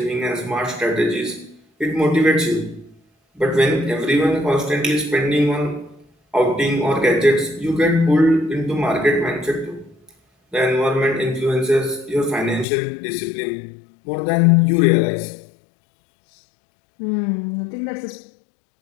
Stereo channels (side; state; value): right; drops out; at 12.7 s